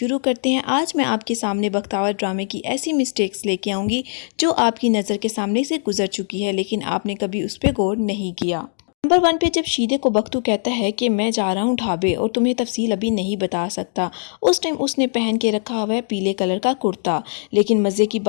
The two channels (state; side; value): silent; right; digital silence